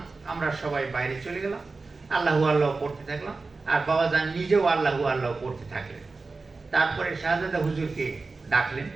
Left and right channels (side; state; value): left; quieter; 3.9 dB